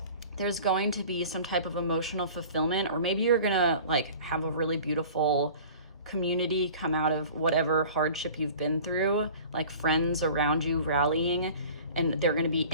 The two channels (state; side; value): inverted; both; correlation -0.43